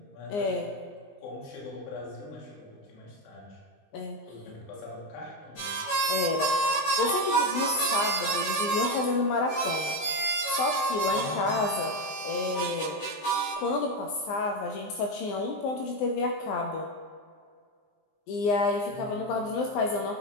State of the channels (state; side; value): late; right; 20 ms